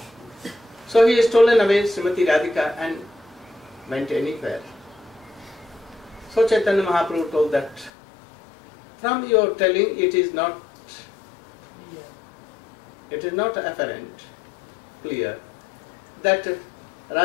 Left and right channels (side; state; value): right; drops out; at 7.9 s